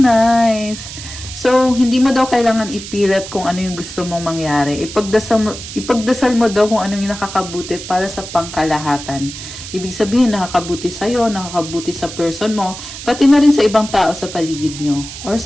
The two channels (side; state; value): right; noise; hiss, 11 dB below the sound